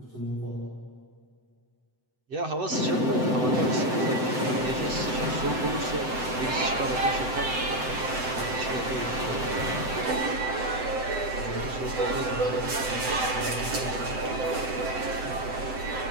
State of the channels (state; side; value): late; left; 7.9 ms